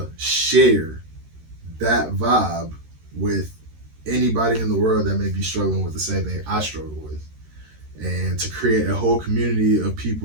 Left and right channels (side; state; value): left; late; 13 ms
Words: share that vibe with anybody in the world that may be struggling with the same thing I struggle with. And to create a whole community of